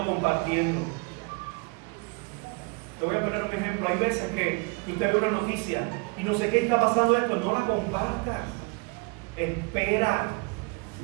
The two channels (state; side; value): quieter; left; 30.8 dB